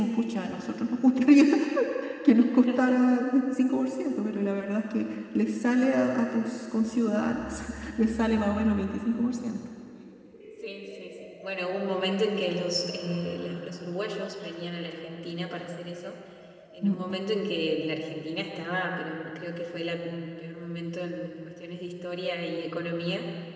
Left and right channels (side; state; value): both; identical; correlation 1.00